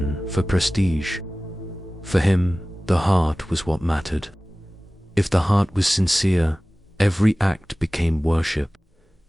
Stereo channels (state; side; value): normal; both; correlation 0.98